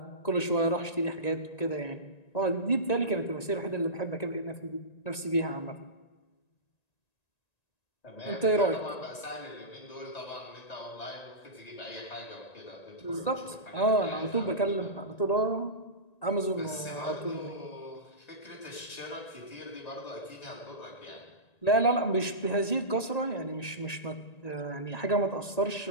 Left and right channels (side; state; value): right; late; 1.9 ms